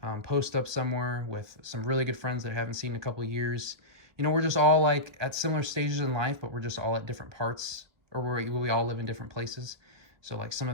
post up somewhere with some really good friends that I haven't seen in a couple of years. You know, we're just all like at similar stages in life, but we're just all at different parts, or where we all live in different places. So like some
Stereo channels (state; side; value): late; left; 1.6 ms